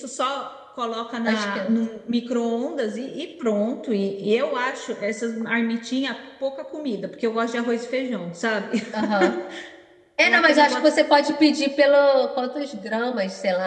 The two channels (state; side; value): identical; both; correlation 1.00